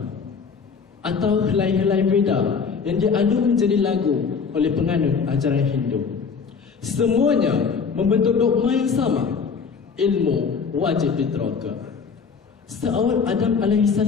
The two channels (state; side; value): quieter; right; 5.6 dB